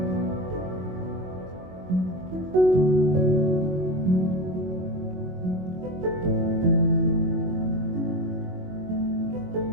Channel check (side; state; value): left; late; 22 ms